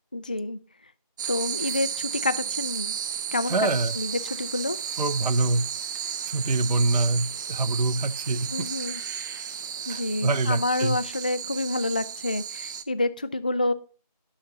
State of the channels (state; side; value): inverted; both; correlation -0.61